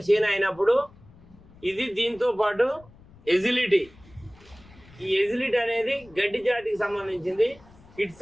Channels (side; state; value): left; noise; rumble, 25 dB below the sound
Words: చేను అయినప్పుడు ఇది దీంతో పాటు ఎజిలిటీ. ఈ ఎజిలిటీ అనేది గడ్డి జాతికి సంబంధించింది,